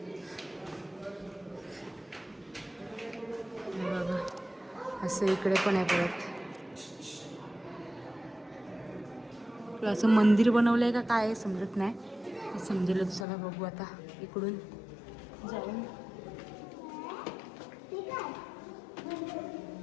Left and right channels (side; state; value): right; drops out; at 13.2 s